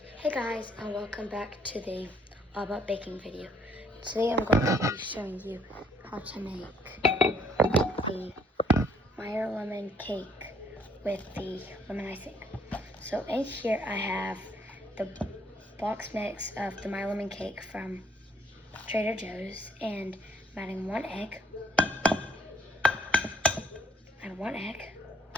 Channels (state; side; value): normal; both; correlation 0.64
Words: Hey guys, and welcome back to the All About Baking video. Today I'm going to be showing you how to make the Meyer lemon cake with the lemon icing. So in here I have the box mix of the Meyer lemon cake from Trader Joe's, and I'm adding one egg. Add one egg.